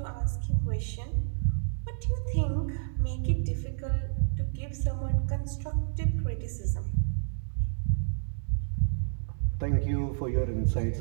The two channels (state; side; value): silent; left; digital silence